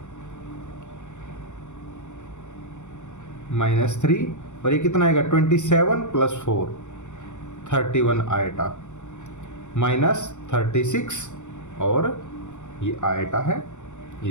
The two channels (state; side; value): late; right; 0.84 ms